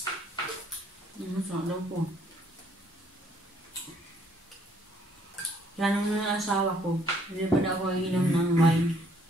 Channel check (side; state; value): both; normal; correlation 0.65